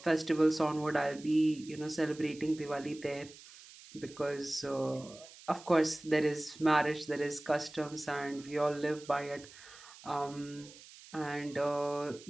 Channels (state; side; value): noise; right; hiss, 19 dB below the sound